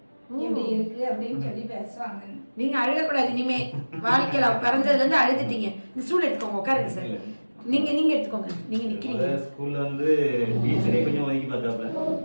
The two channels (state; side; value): inverted; both; correlation -1.00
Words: எப்படி இருக்கு அப்படின்னு சொல்லி பேசுவாங்க. நீங்க அழுகக்கூடாது இனிமே. வாழ்க்கையில பிறந்ததுல இருந்து அழுதுட்டீங்க. இந்த ஸ்டூல் எடுத்துக்கோங்க, உட்காருங்க சார். நீங்க எடுத்துக்கோங்க. நீங்க நிக்கிறீங்க. ஸ்கூல்ல வந்து டீச்சரே கொஞ்சம் ஒதுக்கி பார்த்தாப்ல.